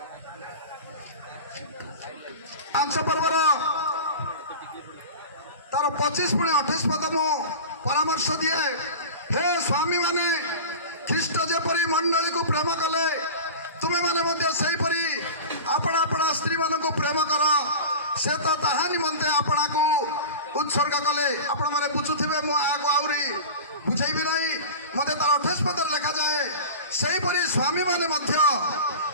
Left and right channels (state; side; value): inverted; both; correlation -0.31